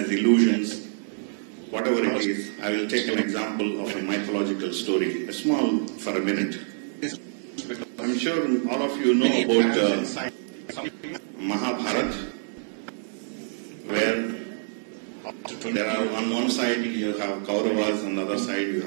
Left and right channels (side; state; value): left; silent; digital silence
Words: illusions, whatever it is. I will take an example of a mythological story, a small for a minute. I'm sure all of you know about Mahabharata, where there are on one side you have Kauravas, on the other side you